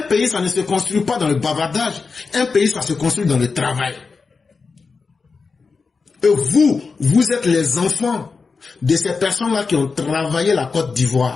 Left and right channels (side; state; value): right; quieter; 4.7 dB